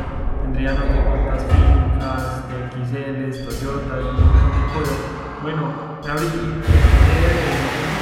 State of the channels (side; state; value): both; identical; correlation 1.00